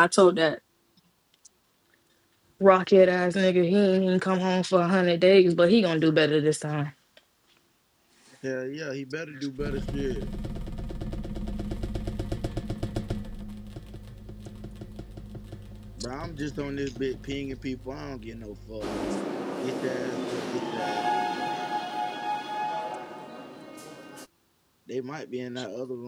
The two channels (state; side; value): identical; both; correlation 1.00